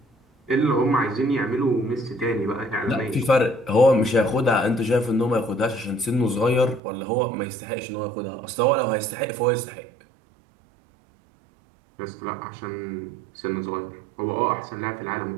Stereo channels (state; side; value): drops out; left; at 6.8 s